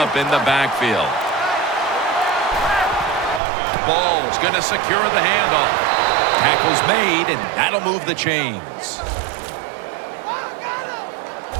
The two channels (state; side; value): drops out; left; at 3.4 s